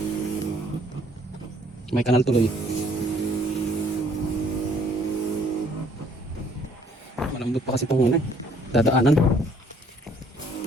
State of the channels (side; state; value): both; normal; correlation 0.62